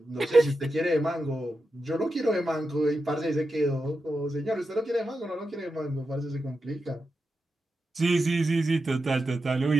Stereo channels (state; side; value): normal; both; correlation 0.89